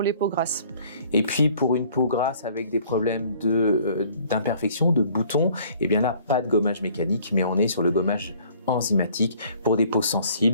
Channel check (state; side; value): inverted; both; correlation -0.56